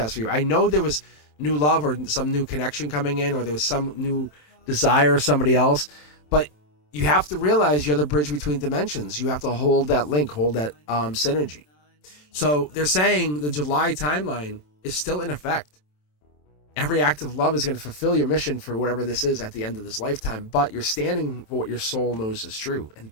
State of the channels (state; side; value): late; right; 27 ms